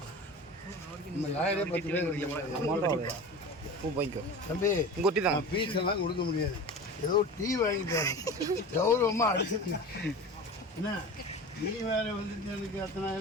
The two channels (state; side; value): normal; both; correlation 0.33